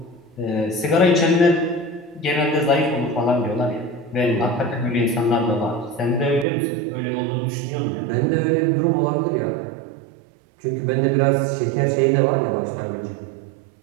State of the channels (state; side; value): drops out; left; at 6.5 s